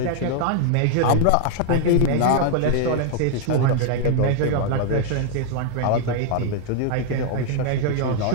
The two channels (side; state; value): both; different; correlation 0.00